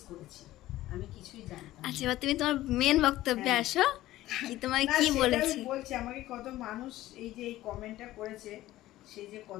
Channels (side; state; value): right; quieter; 15.6 dB